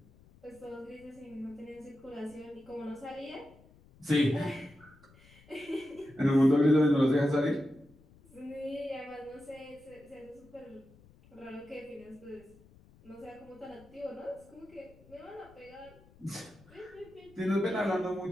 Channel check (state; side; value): noise; left; rumble, 25 dB below the sound